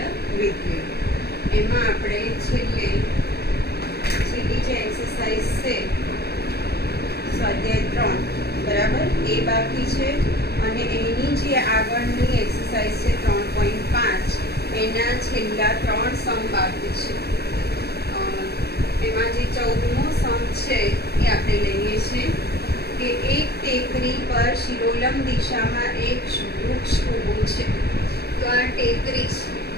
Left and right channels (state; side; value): late; right; 0.47 ms